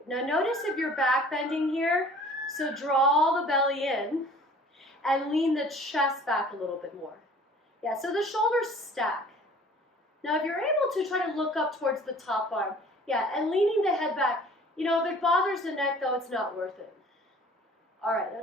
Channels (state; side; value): normal; both; correlation 0.49